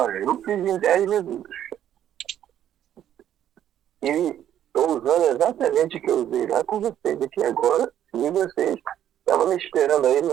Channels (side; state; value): left; quieter; 10.8 dB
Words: eu fiz em 10 minutos. E estou usando exatamente o que eu usei lá com vocês aqui agora, e vocês estavam me esperando aí,